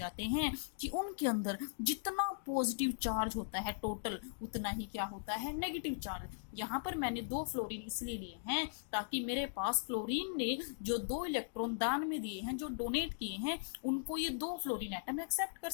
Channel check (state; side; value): silent; right; digital silence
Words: हैं कि उनके अंदर जितना पॉजिटिव चार्ज होता है टोटल, उतना ही क्या होता है? Negative charge. यहाँ पर मैंने 2 फ्लोरीन इसलिए लिए हैं ताकि मेरे पास फ्लोरीन ने जो 2 इलेक्ट्रॉन दान में दिए हैं, जो डोनेट किए हैं, उनको ये 2 फ्लोरीन एटम एक्सेप्ट कर